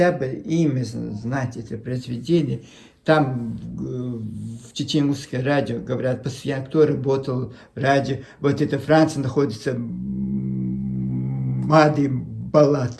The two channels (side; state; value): both; identical; correlation 1.00